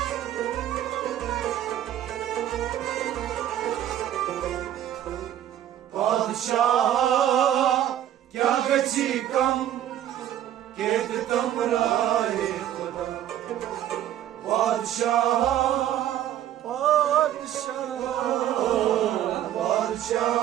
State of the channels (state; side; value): quieter; left; 11.6 dB